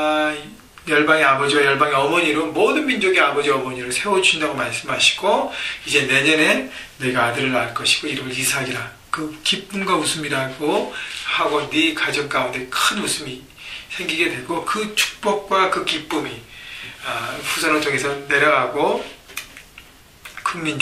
아버지와 열방의 어머니로 모든 민족의 아버지 어머니로 세워주신다고 말씀하시고, 이제 내년에 내가 아들을 낳을 것이고 이름을 이삭이라, 그 기쁨과 웃음이라고 하고 네 가정 가운데 큰 웃음이 생기게 되고 그 축복과 그 기쁨이 후손을 통해서 내려가고 큰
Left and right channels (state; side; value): identical; both; correlation 1.00